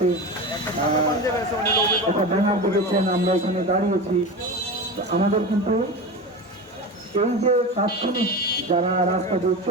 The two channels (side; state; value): both; normal; correlation 0.26